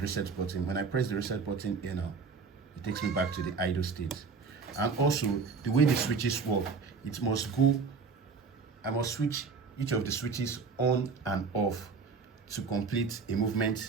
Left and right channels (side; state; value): left; quieter; 5.0 dB